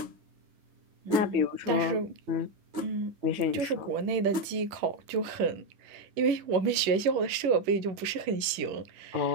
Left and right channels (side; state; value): left; late; 11 ms